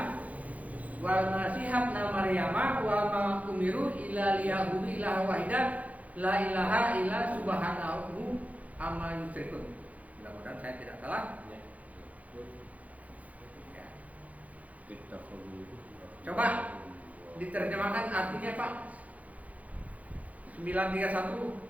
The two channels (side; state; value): left; late; 0.071 ms